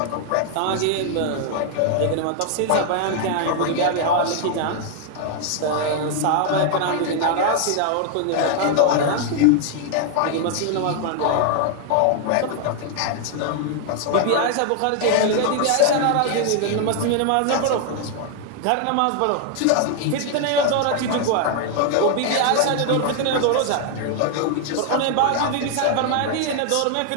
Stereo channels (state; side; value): different; both; correlation 0.00